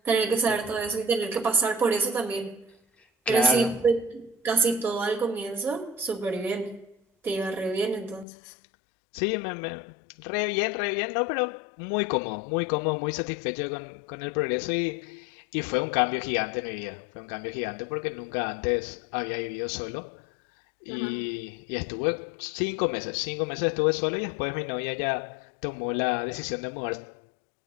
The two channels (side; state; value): right; drops out; at 8.2 s